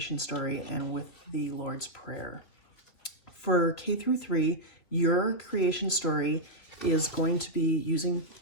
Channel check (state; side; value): late; right; 2.8 ms